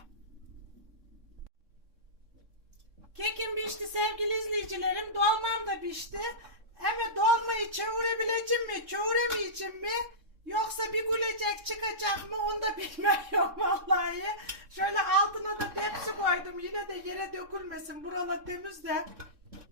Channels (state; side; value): late; left; 3.6 ms